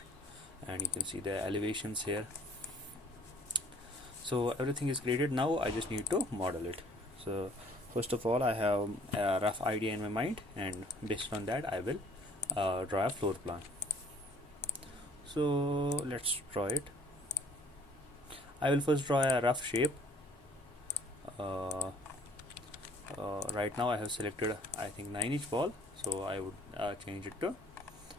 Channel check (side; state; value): both; normal; correlation 0.57